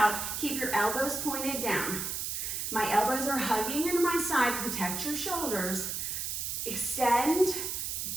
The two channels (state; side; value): noise; right; hiss, 3 dB below the sound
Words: Keep your elbows pointed down. My elbows are hugging into my side. Protect your shoulders. Extend,